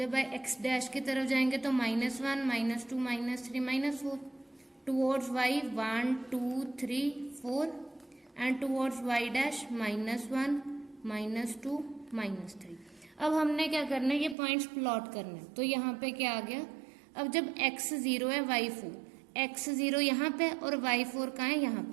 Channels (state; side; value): drops out; left; at 14.4 s